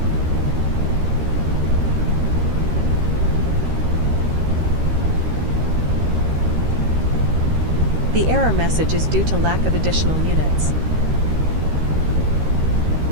The error message is due to lack of additional units.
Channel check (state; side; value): late; left; 13 ms